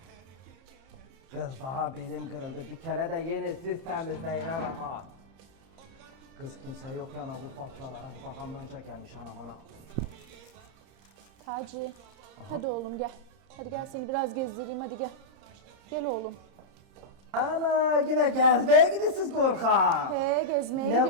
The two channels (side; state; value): left; late; 30 ms